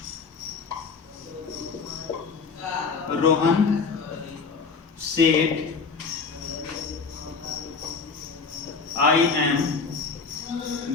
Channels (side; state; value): right; quieter; 4.9 dB